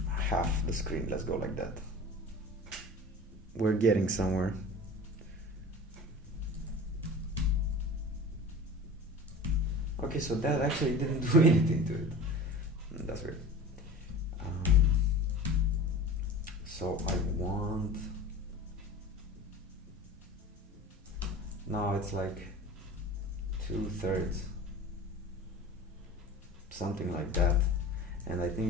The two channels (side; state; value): both; normal; correlation 0.36